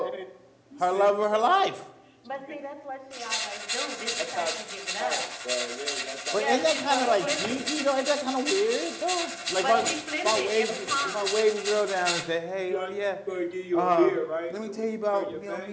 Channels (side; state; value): both; identical; correlation 1.00